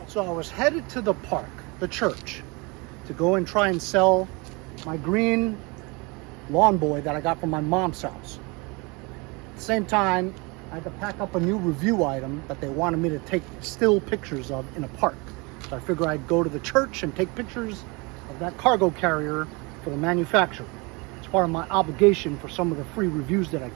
So I was headed to the park, the church, to go and try and sell my green lawn boy that I got from my mom's house. At the same time, I had to pack up a new review item that they wanted me to take still pictures of in a park. So I figured I'd go to the church and take pictures of that cargo carrier for the manufacturer. It's part of my obligation for some of the free reviews that I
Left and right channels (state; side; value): quieter; left; 27.8 dB